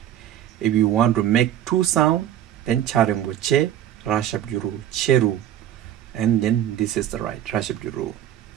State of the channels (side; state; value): left; quieter; 11.2 dB